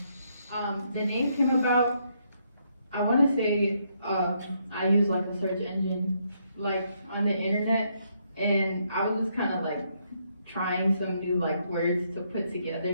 The name came about, I want to say, I use like a search engine, like on the internet, and I was just kind of like trying some new like words to put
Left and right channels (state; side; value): inverted; both; correlation -0.75